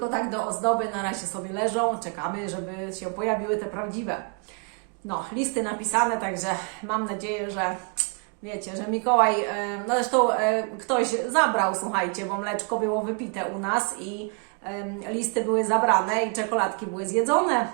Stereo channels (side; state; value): left; quieter; 37.8 dB